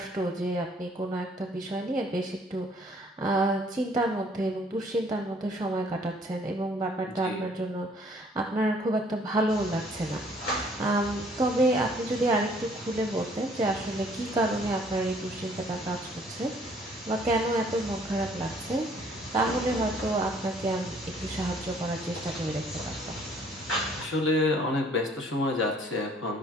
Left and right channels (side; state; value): both; normal; correlation 0.60